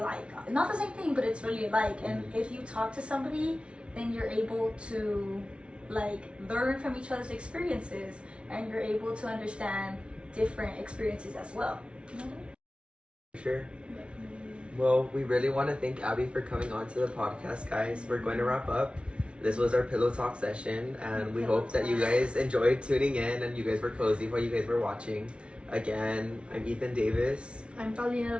not the same thing, but it's really alike. And if you talk to somebody, then you're able to like learn from each other's experiences, and you're able to understand different experiences as well. Sure. Well, we really want to thank Abby for coming on to the podcast, guys. We're going to wrap up. This was our pillow talk session, and we hope that you guys enjoyed tuning in and you guys were cozy while you guys were watching. Again, I'm Ethan Davis. I'm Paulina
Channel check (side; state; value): left; late; 0.059 ms